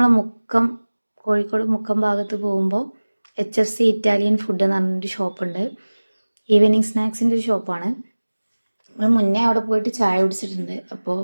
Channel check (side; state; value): both; inverted; correlation -1.00